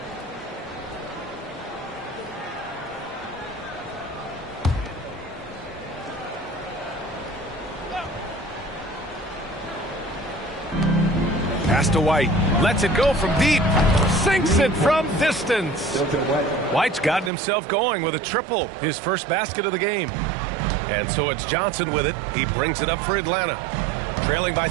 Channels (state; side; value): drops out; left; at 17.3 s